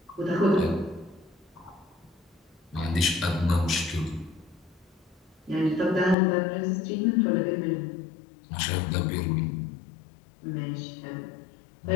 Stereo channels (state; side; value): drops out; right; at 6.2 s